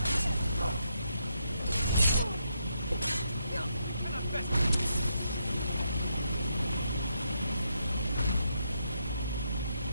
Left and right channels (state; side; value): inverted; both; correlation -0.79